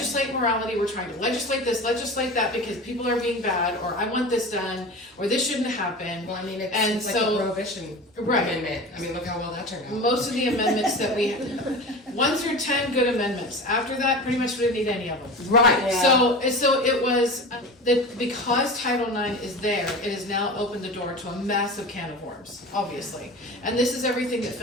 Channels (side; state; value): both; normal; correlation 0.32